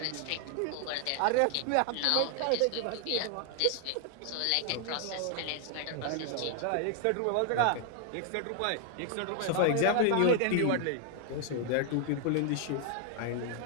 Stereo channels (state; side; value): different; both; correlation 0.00